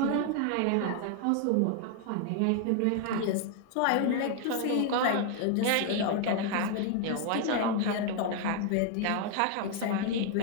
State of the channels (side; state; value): both; different; correlation 0.00